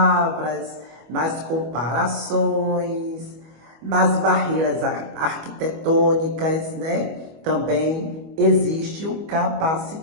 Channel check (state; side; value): late; left; 25 ms